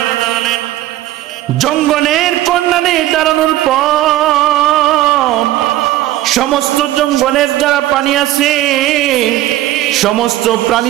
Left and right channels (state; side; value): quieter; left; 14.9 dB